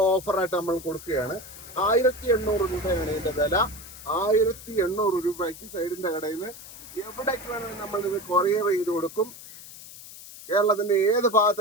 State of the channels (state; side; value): noise; left; hiss, 16 dB below the sound